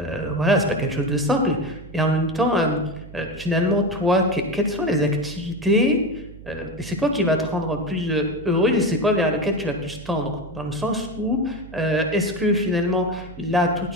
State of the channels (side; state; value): right; noise; hum, 17 dB below the sound